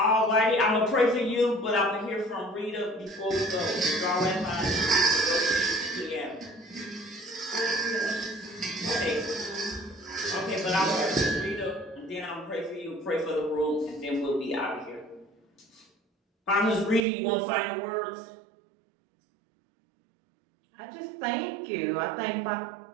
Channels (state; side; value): drops out; left; at 17.1 s